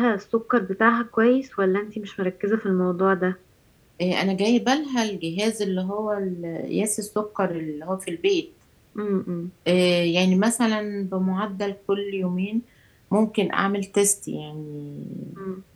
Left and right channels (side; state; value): both; identical; correlation 1.00